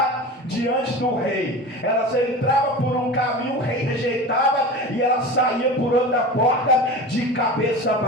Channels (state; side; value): normal; both; correlation 0.31